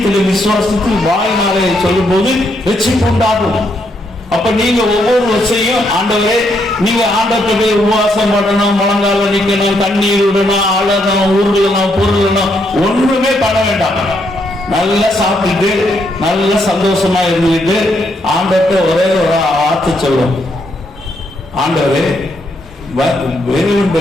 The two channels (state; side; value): normal; both; correlation 0.76